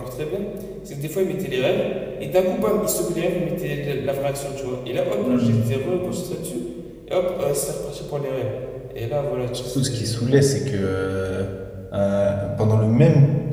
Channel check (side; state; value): both; identical; correlation 1.00